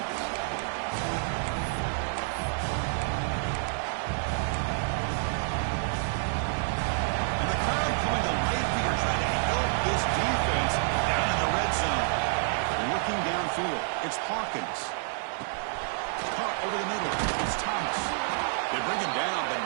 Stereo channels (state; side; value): silent; left; digital silence